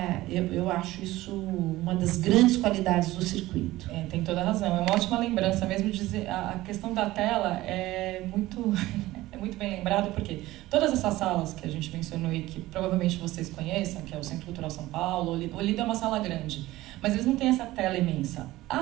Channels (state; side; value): quieter; left; 17.3 dB